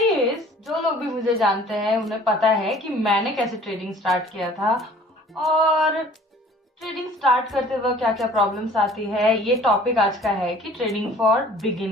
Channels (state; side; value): normal; both; correlation 0.51